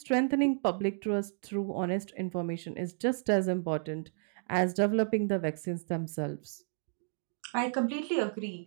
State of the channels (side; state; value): left; silent; digital silence